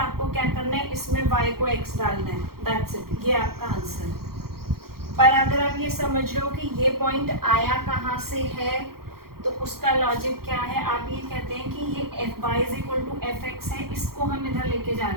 क्या करना है, इसमें y को x डालना है, दैट्स इट, ये आपका आंसर है। पर अगर आप ये समझ रहे हो कि ये पॉइंट आया कहाँ से है, तो उसका लॉजिक क्या है, आप ये कहते हैं कि ये y is equal to F X है, इसको हम इधर लेके जा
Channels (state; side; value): late; left; 0.94 ms